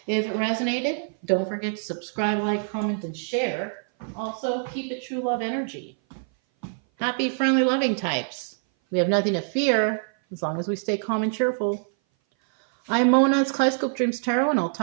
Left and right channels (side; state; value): left; silent; 58 dB below the other